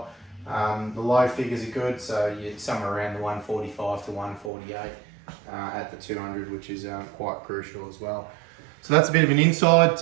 The low figures are good, so you're somewhere around the 145 to 148 at the 200, which is quite crucial as well. So that's a bit of an insight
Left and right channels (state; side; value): drops out; left; at 4.5 s